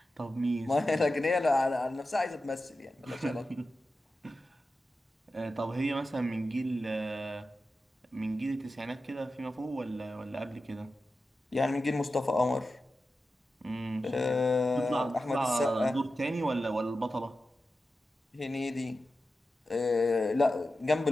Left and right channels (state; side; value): normal; both; correlation 0.92